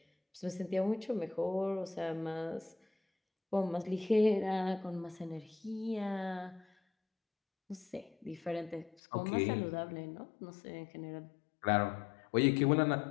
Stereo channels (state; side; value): drops out; right; at 9.0 s